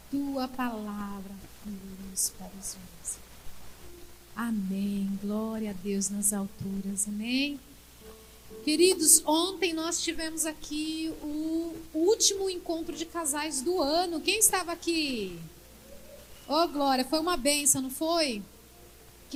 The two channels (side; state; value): both; identical; correlation 1.00